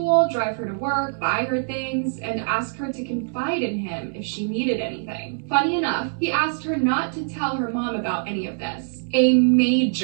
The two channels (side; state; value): left; silent; digital silence